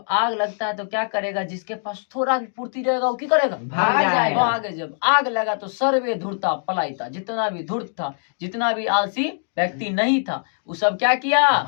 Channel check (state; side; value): silent; right; digital silence